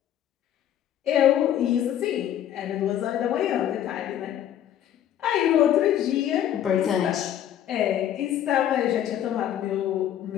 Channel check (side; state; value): right; quieter; 10.9 dB